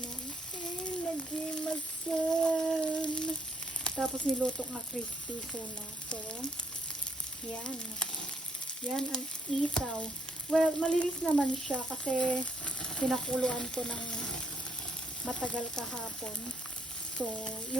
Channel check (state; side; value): normal; both; correlation 0.71